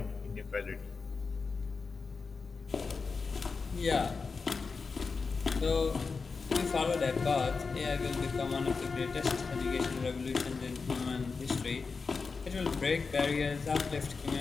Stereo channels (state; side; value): quieter; right; 4.7 dB